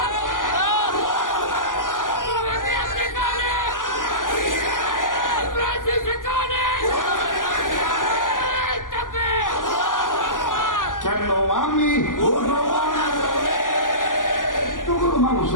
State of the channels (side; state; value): right; late; 0.88 ms